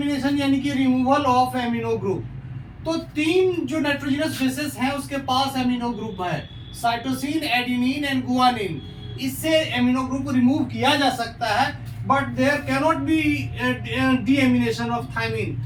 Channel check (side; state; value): both; identical; correlation 1.00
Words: यानी कि रिमूवल ऑफ एमिनो ग्रुप। तो तीन जो नाइट्रोजनस बेसेस हैं उसके पास एमिनो ग्रुप है, साइटोसिन एडेनिन एंड गुआनिन। इससे एमिनो ग्रुप रिमूव किया जा सकता है, but there can not be deamination of thymine.